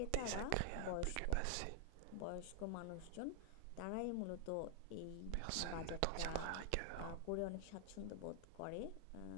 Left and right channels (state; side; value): different; both; correlation 0.00